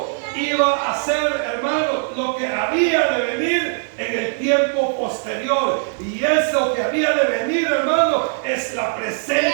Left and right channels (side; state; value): left; silent; digital silence